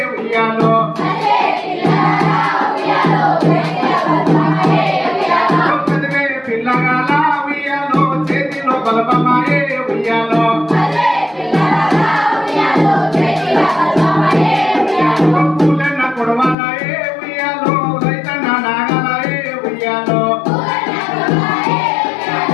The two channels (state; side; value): drops out; right; at 16.6 s